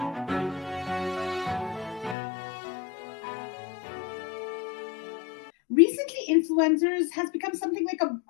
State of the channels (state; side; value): drops out; right; at 2.1 s